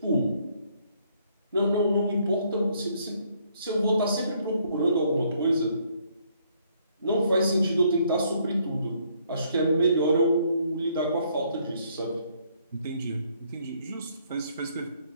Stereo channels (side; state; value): both; inverted; correlation -0.68